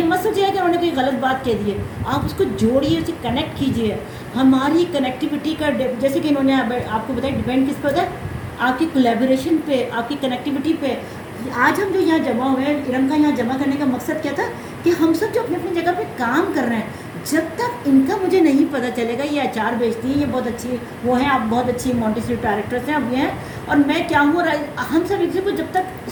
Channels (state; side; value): identical; both; correlation 1.00